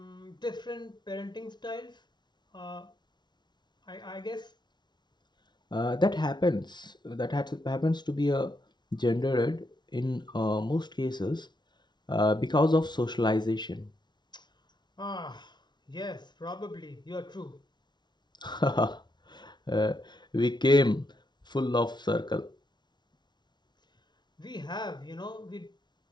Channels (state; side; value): late; right; 0.21 ms